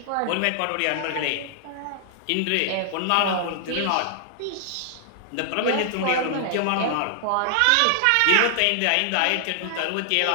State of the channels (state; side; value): different; both; correlation 0.00